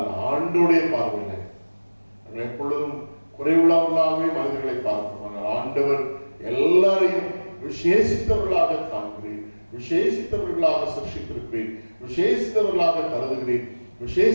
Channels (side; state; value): both; inverted; correlation -1.00